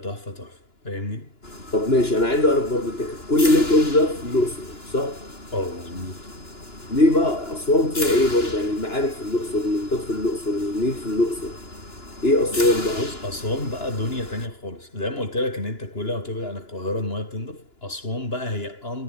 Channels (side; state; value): right; late; 2.9 ms